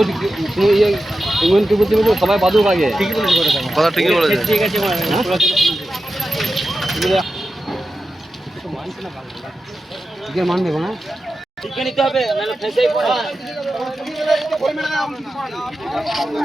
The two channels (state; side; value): normal; both; correlation 0.91